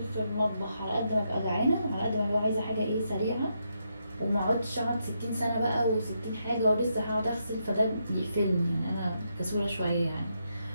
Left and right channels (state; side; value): inverted; both; correlation -0.81